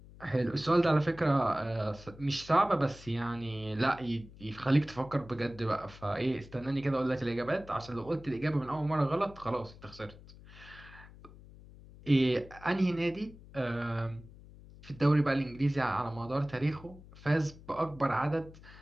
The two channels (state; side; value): noise; left; hum, 19 dB below the sound